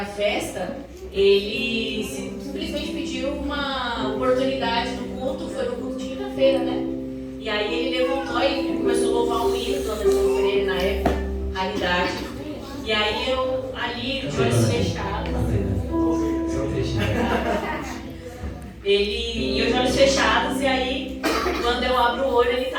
festa, ele simplesmente pediu uma oportunidade no culto, foi no culto de quinta-feira, né? E aí ele levantou e começou a louvar um hino do Anderson Pereira na época, Raridade. E aí eu ali, de olhos fechados. E eu de olhos fechados, e aí quando eu abro o olho ele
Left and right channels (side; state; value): both; identical; correlation 1.00